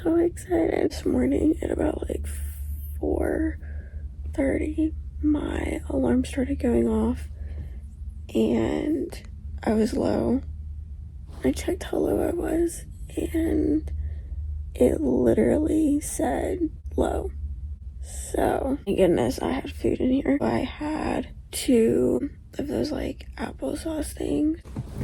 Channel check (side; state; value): both; identical; correlation 1.00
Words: excited. This morning at about like 4:30, my alarm started going off and I was low. I checked how low I was and it literally said low. So, thank goodness I had food in here. I had 2 of those like applesauce things.